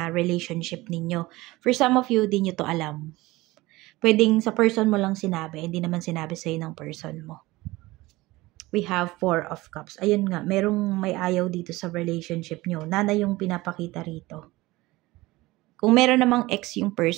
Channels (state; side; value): quieter; left; 19.9 dB